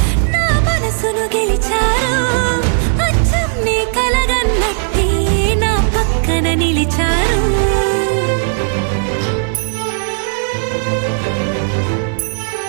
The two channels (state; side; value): silent; left; digital silence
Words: నా మనసును గెలిచారు అచ్చం నీ కలగన్నట్టే నా పక్కన నిలిచారు